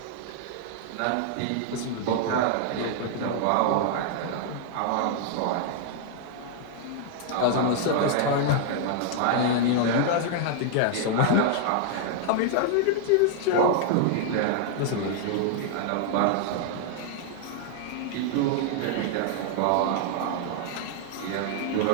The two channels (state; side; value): different; both; correlation -0.01